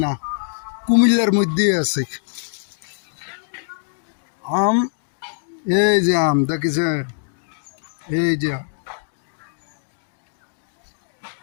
না, কুমিল্লার মধ্যেই আছে আম। এই যে আম দেখেছে, এই যে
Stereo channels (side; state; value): right; silent; digital silence